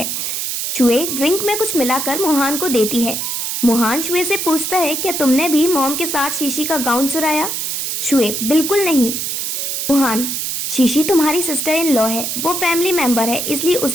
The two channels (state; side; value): noise; right; hiss, 2 dB below the sound